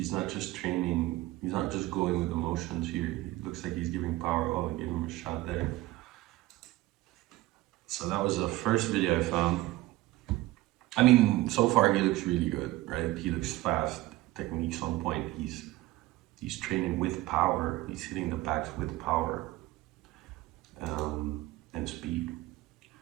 not just training, he's not just going with emotions here. He looks like he's giving power. Oh, I gave him a shot there. So that was the first video I found. I mean, so far he looks really good, right? He looks fast, technique's on point. He's training with power. He's hitting the backs with power and speed.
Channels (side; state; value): left; quieter; 17.9 dB